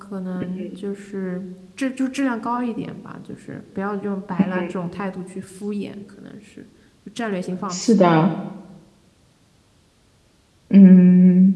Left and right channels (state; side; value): identical; both; correlation 1.00